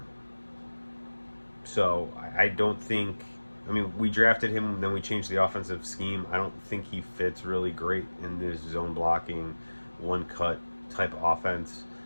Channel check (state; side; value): inverted; both; correlation -1.00